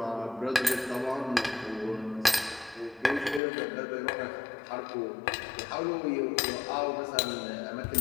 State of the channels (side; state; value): right; drops out; at 3.4 s